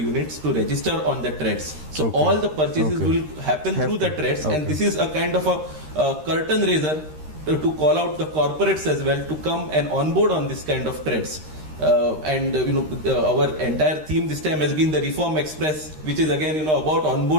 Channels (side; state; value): left; late; 13 ms